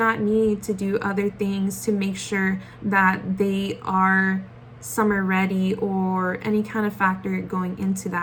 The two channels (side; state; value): both; identical; correlation 1.00